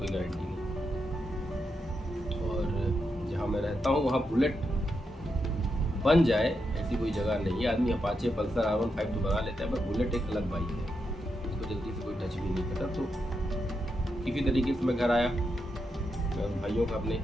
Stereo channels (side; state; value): both; normal; correlation 0.84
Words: गारंटी नहीं। और जहाँ मैं रहता हूँ वहाँ बुलेट बन जाए ऐसी कोई जगह नहीं है। आदमी अपाचे, पल्सर, R15 तो बना लेता है, पर बुलेट एक अलग बाइक है, उसको जल्दी से कोई टच भी नहीं करता। तो किसी तरीके से मैं घर आया। मैं भाइयों का अपने